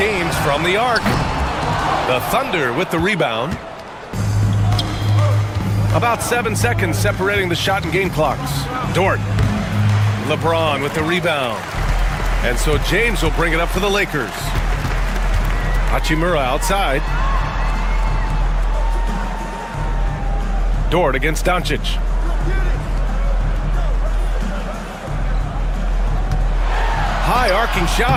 from the arc. The Thunder with the rebound. About 7 seconds separating the shot and game clocks. Dort. LeBron with the rebound. And so James will bring it up for the Lakers. Hachimura outside. Dort against Doncic. High arcing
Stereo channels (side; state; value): both; identical; correlation 1.00